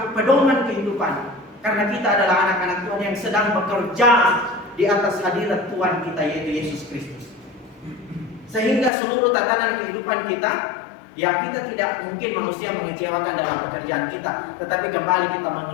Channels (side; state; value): right; drops out; at 8.9 s